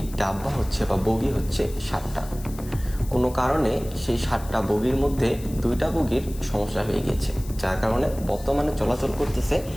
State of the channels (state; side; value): noise; left; hiss, 18 dB below the sound